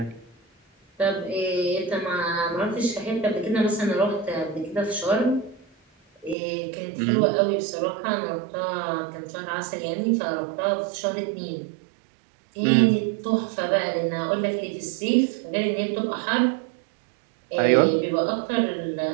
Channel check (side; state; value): left; drops out; at 6.4 s